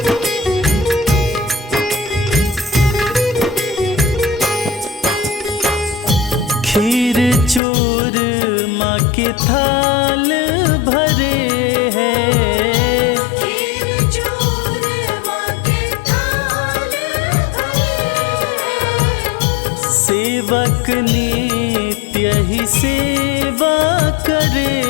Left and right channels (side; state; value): right; drops out; at 7.6 s